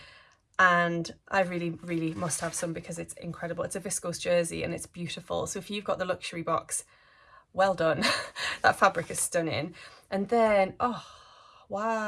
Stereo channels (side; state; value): both; identical; correlation 1.00